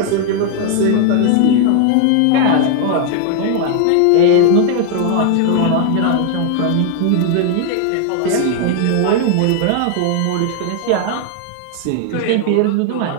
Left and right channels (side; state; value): both; different; correlation 0.00